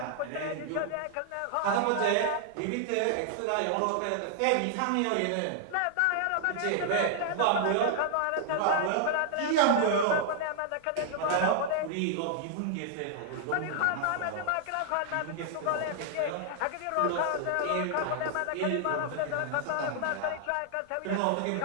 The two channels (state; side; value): different; both; correlation -0.01